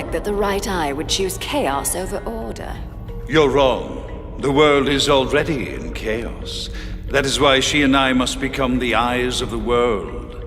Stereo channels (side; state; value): both; identical; correlation 1.00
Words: that the right eye would choose chaos over order. You're wrong. The world is already in chaos. That is why she and I must become the eyes of the world.